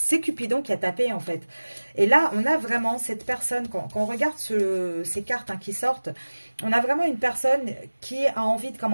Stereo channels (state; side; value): inverted; both; correlation -1.00